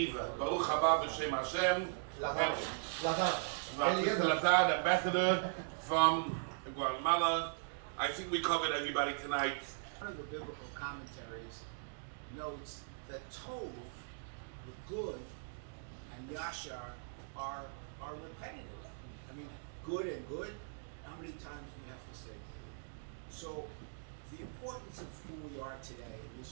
Baruch haba b'shem Hashem. Lazar, the ambassador from Guatemala. I think we covered everybody tonight. One of the biblical commentaries notes that Tov, the good, and Yashar are repetitive. I mean, good and good, how many times do we have to say good? So the importance of who we are today in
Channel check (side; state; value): left; silent; digital silence